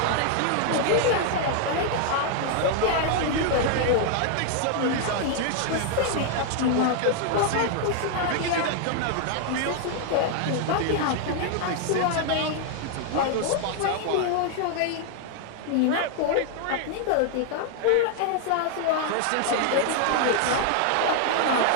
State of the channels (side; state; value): both; different; correlation 0.00